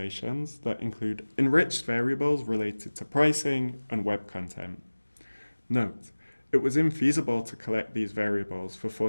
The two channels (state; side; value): inverted; both; correlation -1.00